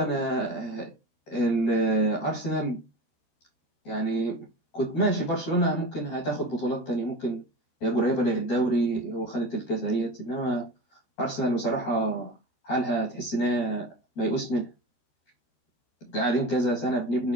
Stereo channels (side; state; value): right; late; 13 ms